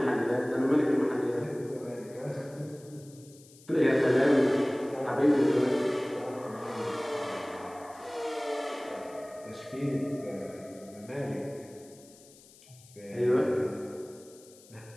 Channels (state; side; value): noise; left; hiss, 24 dB below the sound